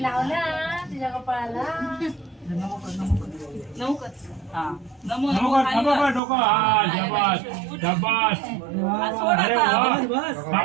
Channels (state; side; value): drops out; left; at 6.2 s